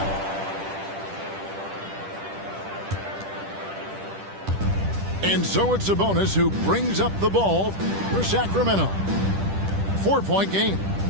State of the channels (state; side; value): late; left; 10 ms